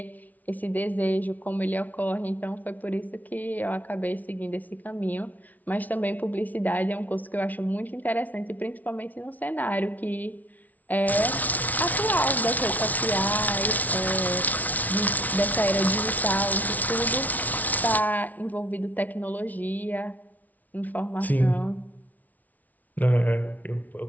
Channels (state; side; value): late; right; 0.075 ms